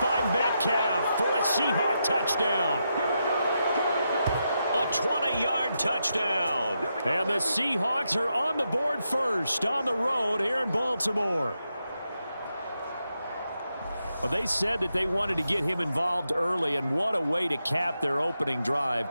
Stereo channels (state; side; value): inverted; both; correlation -0.85